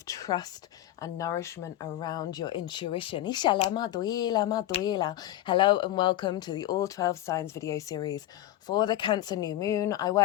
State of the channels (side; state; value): right; quieter; 13.8 dB